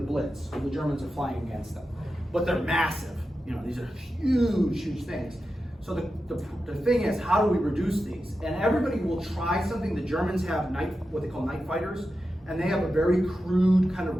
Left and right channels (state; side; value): normal; both; correlation 0.91